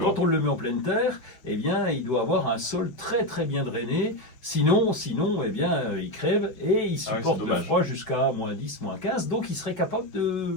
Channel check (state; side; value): late; right; 5.4 ms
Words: quand on le met en pleine terre, eh bien, il doit avoir un sol très très bien drainé, sinon eh bien, il crève, et il Ah ouais, supporte c'est le dommage. froid jusqu'à -10, -15, donc il serait capable